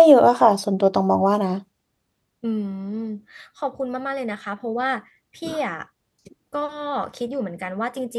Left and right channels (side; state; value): both; identical; correlation 1.00